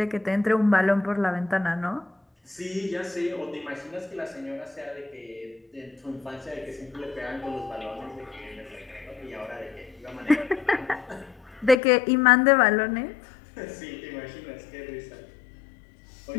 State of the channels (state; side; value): drops out; right; at 11.8 s